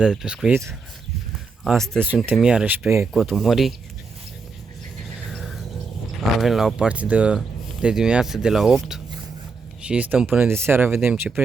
pescuit. Astăzi suntem iarăși pe Cotul Morii. Avem la o partidă de dimineață de la 8 și stăm până de seara, vedem ce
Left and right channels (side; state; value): left; quieter; 4.6 dB